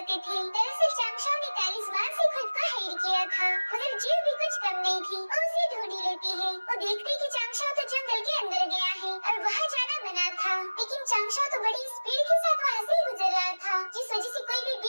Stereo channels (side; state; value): both; inverted; correlation -1.00